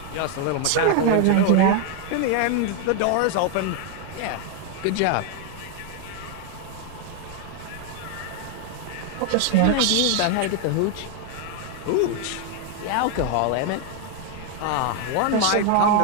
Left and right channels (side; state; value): both; different; correlation 0.01